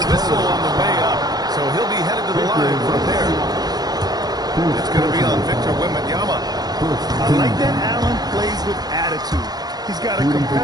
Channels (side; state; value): left; late; 0.19 ms